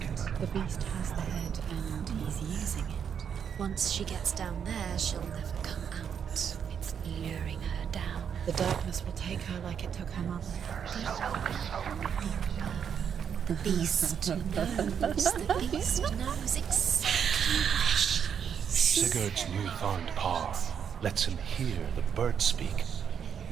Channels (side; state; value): left; quieter; 7.7 dB